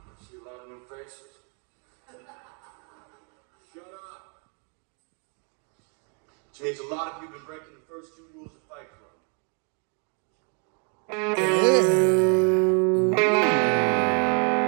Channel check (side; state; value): left; quieter; 38.8 dB